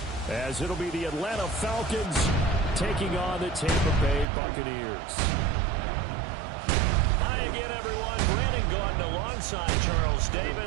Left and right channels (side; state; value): left; drops out; at 4.2 s